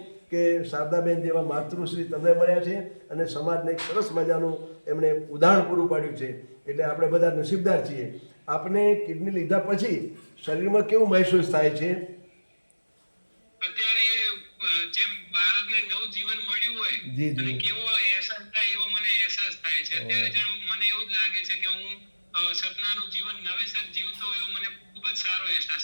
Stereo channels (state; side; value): inverted; both; correlation -1.00